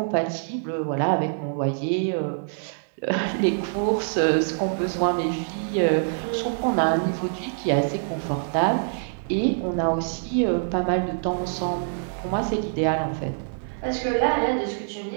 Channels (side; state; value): left; silent; digital silence